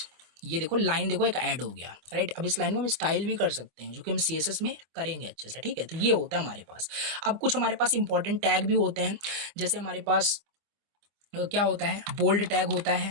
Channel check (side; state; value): left; late; 24 ms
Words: ये देखो लाइन, देखो एक ऐड हो गया, राइट। अब इस लाइन को हम स्टाइल भी कर सकते हैं, जो कि हम CSS में करेंगे अच्छे से, ठीक है। तो ये होता है हमारे पास। अब कुछ हमारे पास इंपॉर्टेंट टैग भी होते हैं, जैसे हमारे पास क्या होता है, बोल्ड टैग होता है,